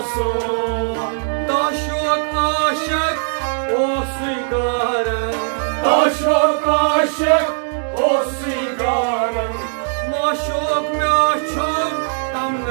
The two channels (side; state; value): left; silent; digital silence